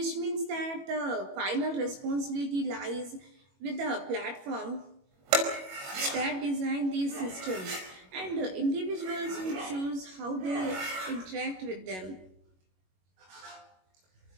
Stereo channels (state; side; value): late; left; 21 ms